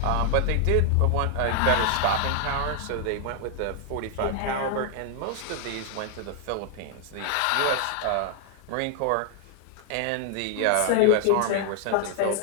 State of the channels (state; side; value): different; both; correlation 0.00